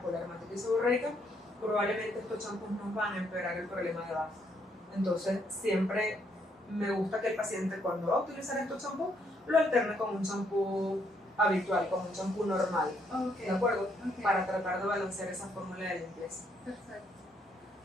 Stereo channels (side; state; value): both; normal; correlation 0.72